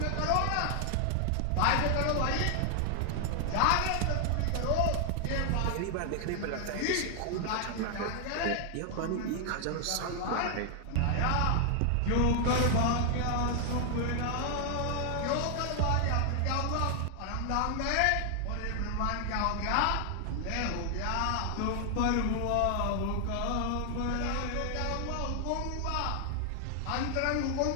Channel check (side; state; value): both; different; correlation 0.00